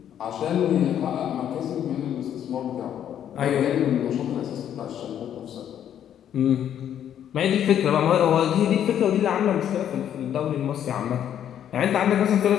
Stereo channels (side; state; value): right; quieter; 10.0 dB